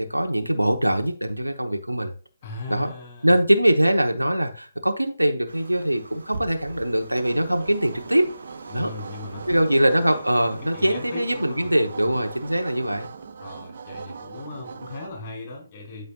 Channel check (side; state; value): both; inverted; correlation -0.96